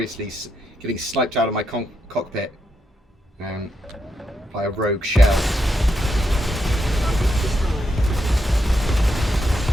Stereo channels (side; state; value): both; normal; correlation 0.83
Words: getting sniped out of my cockpit by a rogue shell.